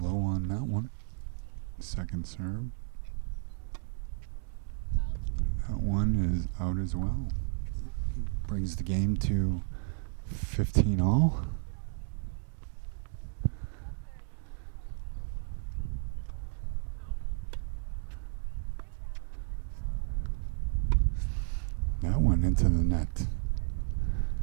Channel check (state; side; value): silent; left; 56 dB below the other